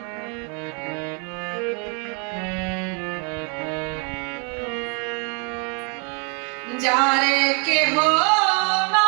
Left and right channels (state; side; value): quieter; left; 36.0 dB